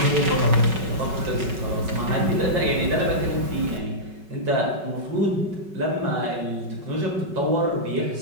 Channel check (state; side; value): late; left; 5.3 ms